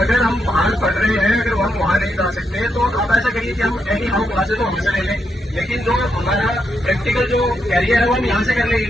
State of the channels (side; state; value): both; normal; correlation 0.82